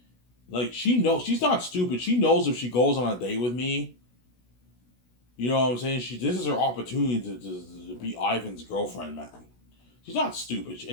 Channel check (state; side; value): late; right; 16 ms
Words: like she knows she's not stupid. She knows if she goes on a date with me, you know what I'm saying? This is her opportunity to be Ivan's girlfriend, man. She's not stupid,